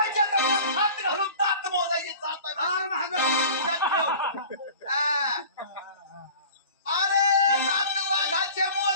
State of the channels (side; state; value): both; inverted; correlation -0.42